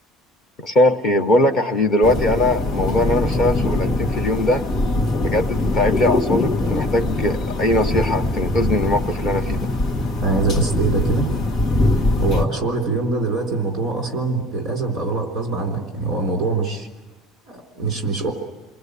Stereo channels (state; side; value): normal; both; correlation 0.48